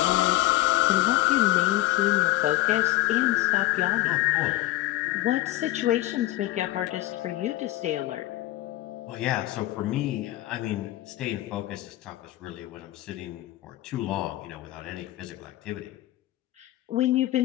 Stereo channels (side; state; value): right; quieter; 16.8 dB